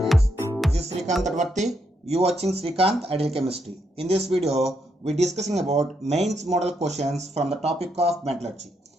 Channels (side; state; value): both; normal; correlation 0.78